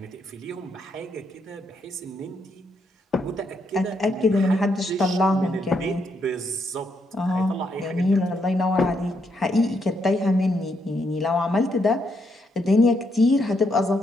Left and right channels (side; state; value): both; normal; correlation 0.77